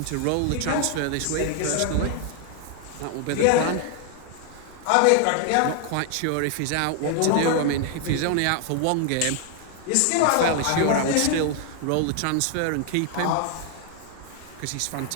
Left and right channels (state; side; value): different; both; correlation 0.00